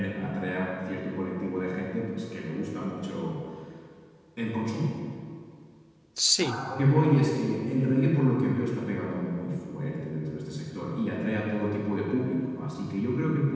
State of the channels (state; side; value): identical; both; correlation 1.00